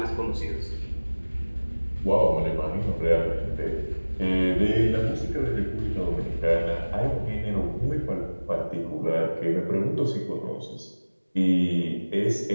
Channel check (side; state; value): both; inverted; correlation -1.00